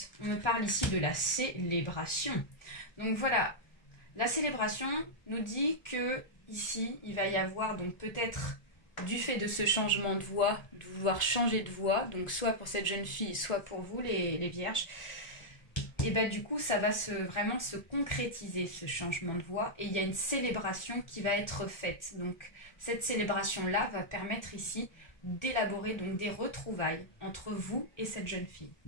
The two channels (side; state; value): right; late; 1.4 ms